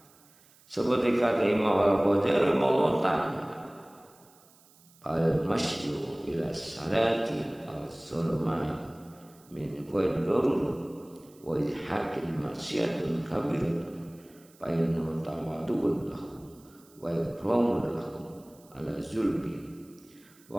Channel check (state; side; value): noise; right; hiss, 28 dB below the sound